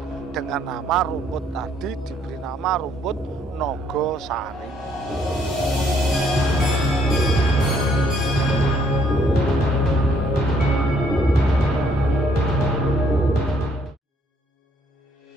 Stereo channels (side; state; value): both; normal; correlation 0.66